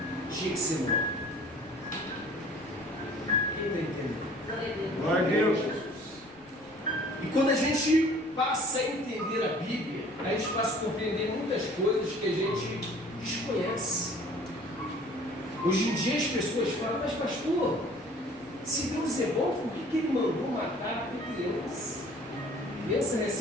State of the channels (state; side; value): noise; right; rumble, 27 dB below the sound